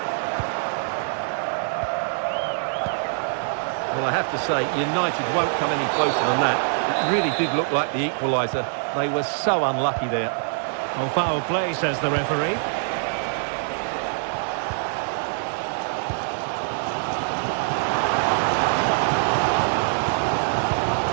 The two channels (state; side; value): silent; left; digital silence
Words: Well, I have to say, United won't come any closer than that. It really did look like the equaliser. They were so unlucky there. Well, foul play, says the referee.